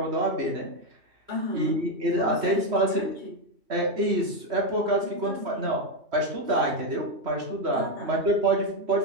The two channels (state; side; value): late; left; 3.1 ms